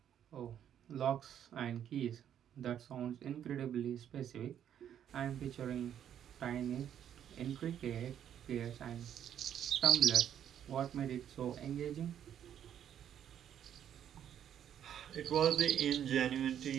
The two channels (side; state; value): left; quieter; 9.7 dB